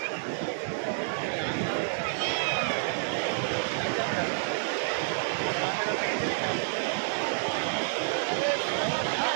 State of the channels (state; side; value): silent; left; digital silence